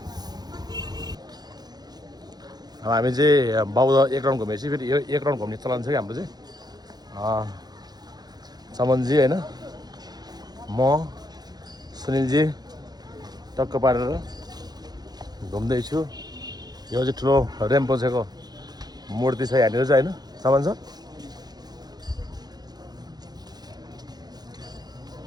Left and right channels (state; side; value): late; left; 0.19 ms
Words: अब हामी चाहिँ बौद्ध एक राउन्ड घुमेपछि फेरि यो एक राउन्ड घुम्ने चलन छ कि हाम्रो चाहिँ समनजी होइन म सुनिलजी टक्क पारेर घुम्दैछु यो चाहिँ ठुलो रेम्पोछेको मूर्ति छ यहाँनिर चाहिँ होइन समन सर